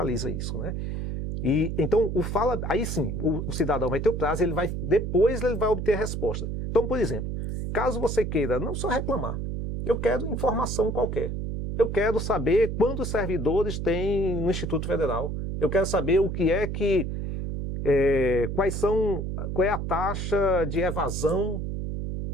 isso, né? E então aí sim, o cidadão vai ter o prazo, depois ele vai obter a resposta. Então, por exemplo, caso você queira não só reclamar, eu quero informação qualquer. Eu quero saber quantos servidores tem no Instituto Federal. Eu quero saber o que é que qual é a taxa de evasão.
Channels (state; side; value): noise; right; hum, 3 dB below the sound